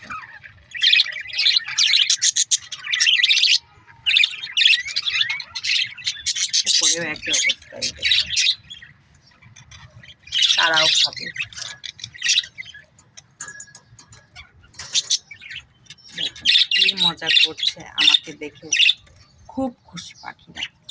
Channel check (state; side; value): identical; both; correlation 1.00